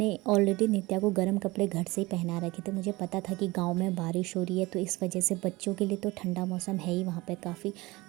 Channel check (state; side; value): quieter; left; 21.7 dB